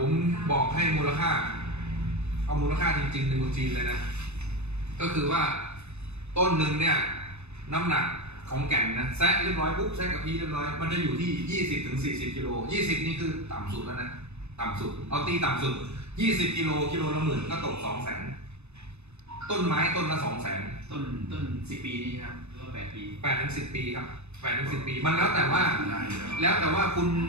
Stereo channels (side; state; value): left; late; 0.81 ms